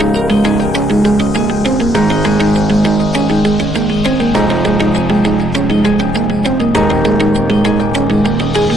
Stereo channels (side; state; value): left; noise; rumble, 8 dB below the sound